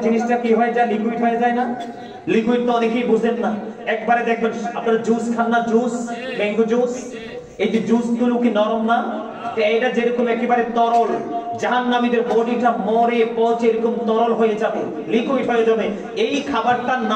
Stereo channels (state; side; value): identical; both; correlation 1.00